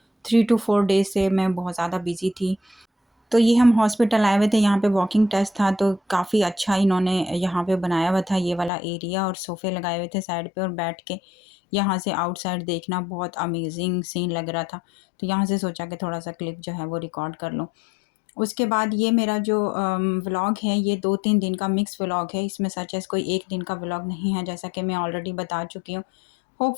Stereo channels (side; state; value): right; drops out; at 8.7 s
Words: 3 टू 4 डेज़ से मैं बहुत ज़्यादा बिज़ी थी। तो ये हम हॉस्पिटल आए हुए थे, यहाँ पे वॉकिंग टेस्ट था तो काफ़ी अच्छा इन्होंने यहाँ पे बनाया हुआ था ये वाला एरिया और सोफ़े लगाए हुए थे साइड पे और बैठ के यहाँ से आउटसाइड देखना बहुत अमेजिंग सीन लग रहा था। तो यहाँ से सोचा कि थोड़ा-सा क्लिप जो है वो रिकॉर्ड कर लूँ। उसके बाद ये मेरा जो व्लॉग है ये 2-3 दिन का मिक्स व्लॉग है। इसमें सच एज़ कोई 1 दिन का व्लॉग नहीं है, जैसा कि मैं ऑलरेडी बता चुकी हूँ।